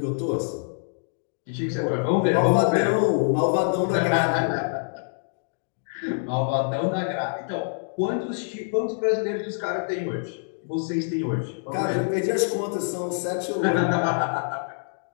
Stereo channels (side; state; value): right; silent; digital silence